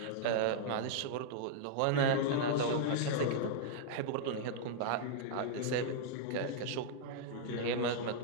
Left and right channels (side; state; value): both; different; correlation -0.01